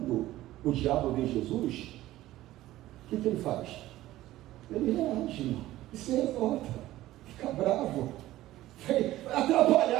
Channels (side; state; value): left; quieter; 15.5 dB